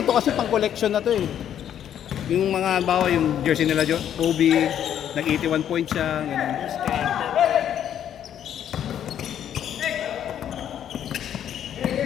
kasi pang collection na to eh. Yung mga bawa, yung jersey nila, Kobe, nag-81 points siya, ganun.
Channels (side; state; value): right; quieter; 9.9 dB